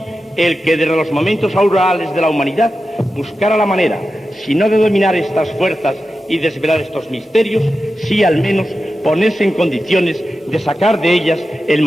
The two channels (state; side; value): normal; both; correlation 0.92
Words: el que desde los momentos aurorales de la humanidad buscara la manera, si no de dominar estas fuerzas y desvelar estos misterios, sí al menos ponerse en condiciones de sacar de ellas el